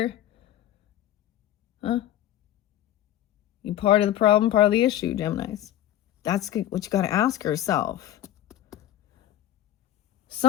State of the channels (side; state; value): right; quieter; 12.5 dB